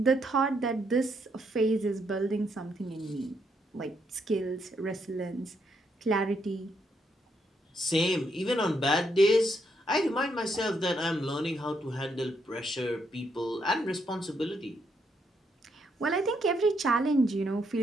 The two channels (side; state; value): both; normal; correlation 0.76